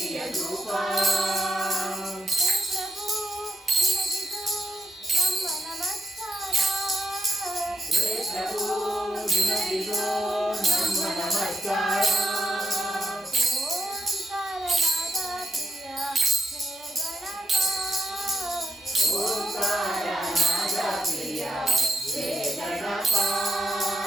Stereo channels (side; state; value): both; normal; correlation 0.82